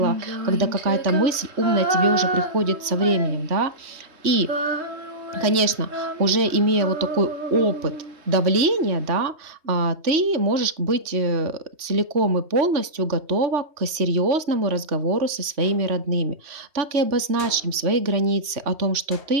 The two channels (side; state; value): left; late; 3.2 ms